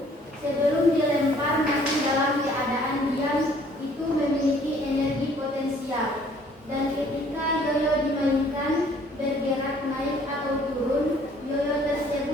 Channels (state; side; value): normal; both; correlation 0.58